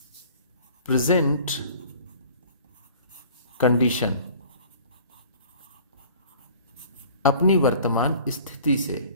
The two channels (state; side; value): inverted; both; correlation -0.48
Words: प्रेजेंट कंडीशन अपनी वर्तमान स्थिति से।